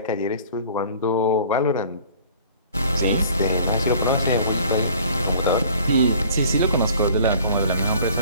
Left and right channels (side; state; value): both; inverted; correlation -0.51